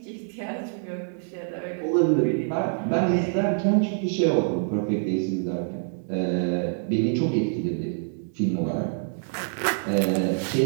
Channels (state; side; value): silent; left; digital silence